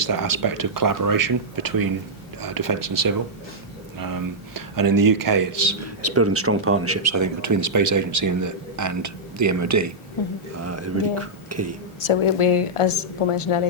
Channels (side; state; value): both; normal; correlation -0.09